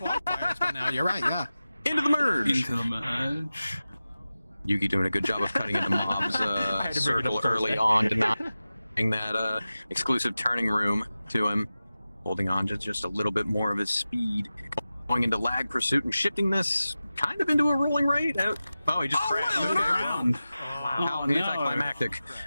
by now. You're right. Yeah. Into the merge. Into the merge. Yuki doing a good job of cutting into Mob's circle early on, denying that exclusive turning room to him, holding on to just a little bit more of his speed, going into lag pursuit and shifting this kind of into a rolling rate. Oh, he just crashed into the ground. How anticlimactic.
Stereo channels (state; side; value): inverted; both; correlation -0.95